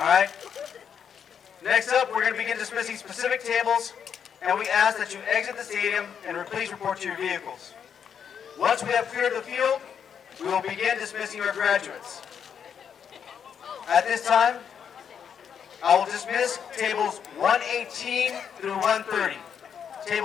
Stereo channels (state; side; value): quieter; right; 7.7 dB